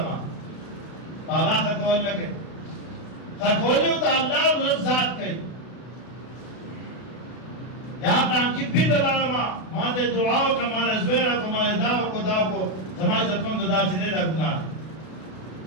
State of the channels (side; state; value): right; late; 32 ms